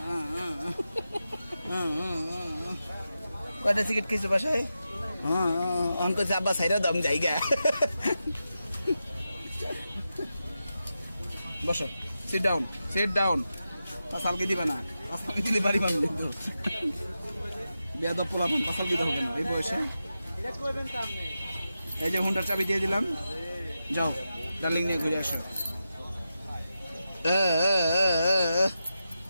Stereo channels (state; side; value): inverted; both; correlation -0.90